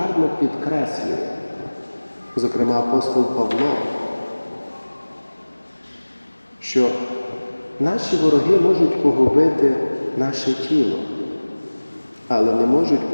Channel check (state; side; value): inverted; both; correlation -1.00